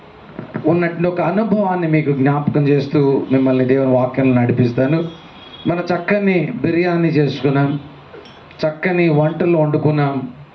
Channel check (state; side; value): identical; both; correlation 1.00